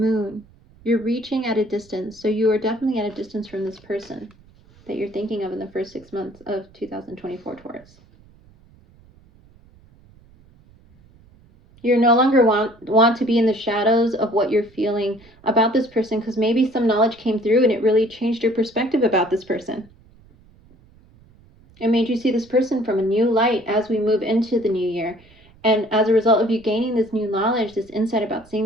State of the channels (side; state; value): right; noise; rumble, 27 dB below the sound